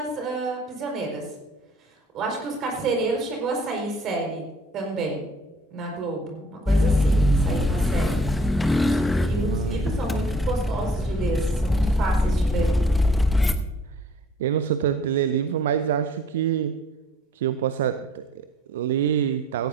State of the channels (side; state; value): both; normal; correlation 0.55